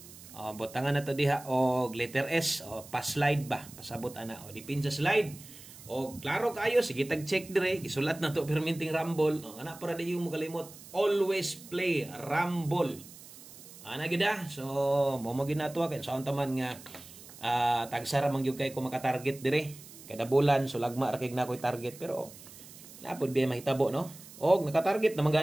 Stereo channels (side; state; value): right; noise; hiss, 18 dB below the sound